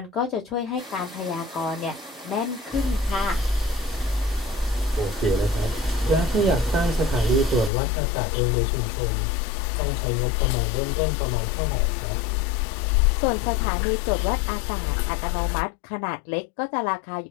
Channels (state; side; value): drops out; right; at 7.7 s